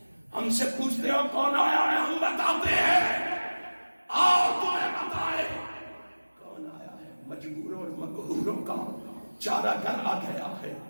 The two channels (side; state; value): both; inverted; correlation -1.00